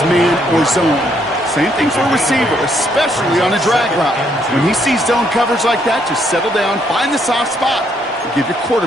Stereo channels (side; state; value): both; normal; correlation 0.71